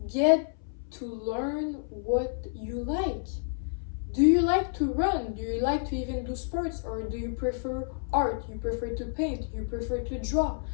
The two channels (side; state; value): right; silent; 58 dB below the other